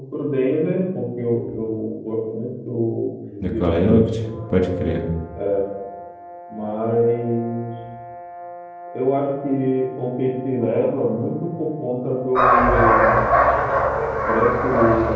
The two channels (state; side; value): identical; both; correlation 1.00